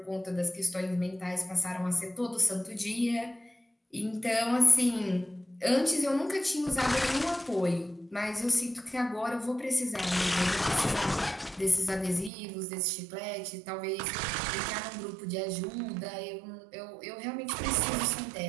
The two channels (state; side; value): drops out; left; at 12.3 s